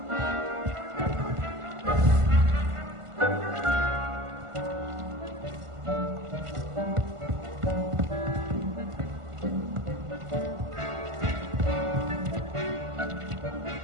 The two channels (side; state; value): left; late; 1.5 ms